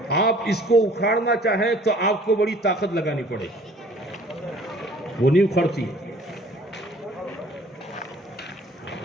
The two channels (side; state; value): both; normal; correlation 0.53